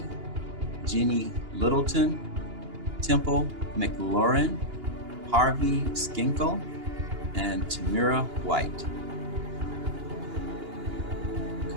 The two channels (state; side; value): late; left; 2.9 ms